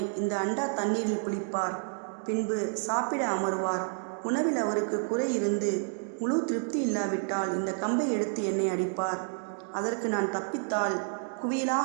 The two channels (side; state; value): left; silent; 58 dB below the other